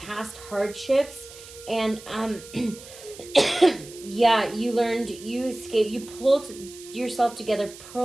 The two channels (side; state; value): right; noise; hiss, 17 dB below the sound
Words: hardships. And, yeah, you learned, you escaped. You pulled yourself together,